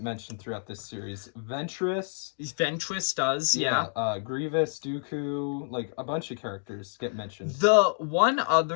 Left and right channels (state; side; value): silent; right; digital silence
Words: mentioned throughout this series. Ventress does, yeah. Grievous, Dooku, like a bunch of characters get mentioned. The one